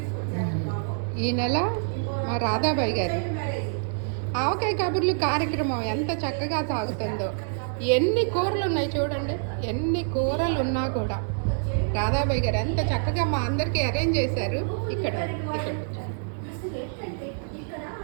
ఈ నెల మా రాధాబాయి గారు ఆవకాయ కబుర్లు కార్యక్రమం ఎంత చక్కగా సాగుతుందో. ఎన్ని కూరలు ఉన్నాయి చూడండి, ఎన్ని కూరలు ఉన్నా కూడా రాధాబాయి గారు ఎంత చక్కగా మా అందరికీ అరేంజ్ చేశారు. ఇక్కడ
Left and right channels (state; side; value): silent; left; digital silence